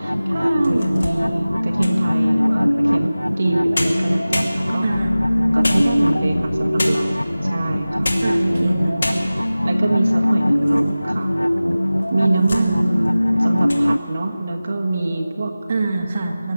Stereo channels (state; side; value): inverted; both; correlation -0.97